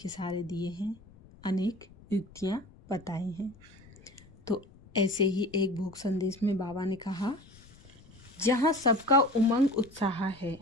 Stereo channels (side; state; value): left; noise; rumble, 24 dB below the sound